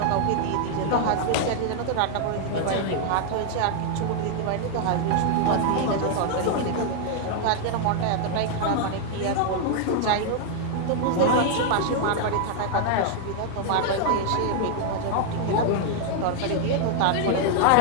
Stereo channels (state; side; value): different; both; correlation 0.00